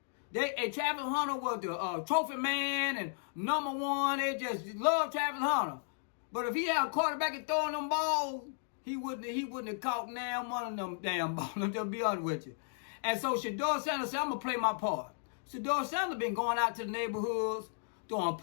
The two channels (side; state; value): right; silent; digital silence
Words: Travis Hunter was the trophy man and #1. They just love Travis Hunter. But if he had a quarterback and throwing them balls, he wouldn't have caught now one of them damn balls. I'm just be honest with you. And so Shedeur Sanders said, I'm gonna play my part. Shedeur Sanders been going out to the neighborhoods, throwing a